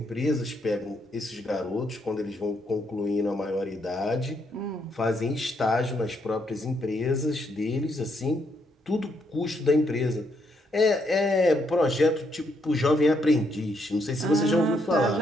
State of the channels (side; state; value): both; normal; correlation 0.75